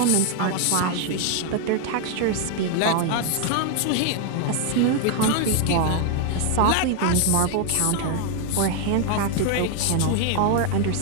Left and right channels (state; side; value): different; both; correlation 0.00